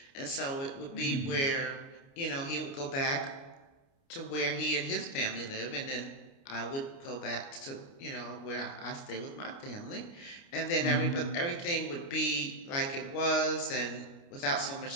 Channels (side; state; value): right; late; 29 ms